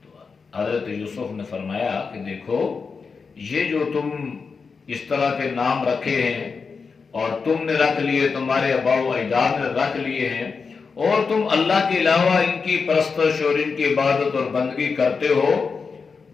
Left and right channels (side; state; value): right; quieter; 5.1 dB